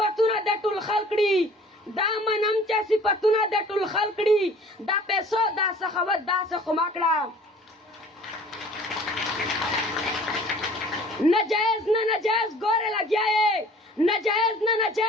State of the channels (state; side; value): normal; both; correlation 0.49